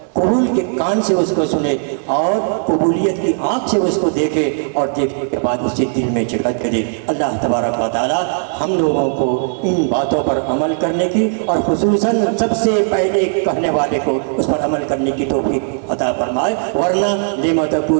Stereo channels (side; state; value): left; silent; digital silence